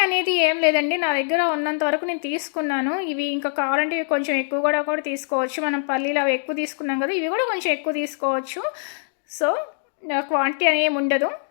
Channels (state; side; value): silent; right; digital silence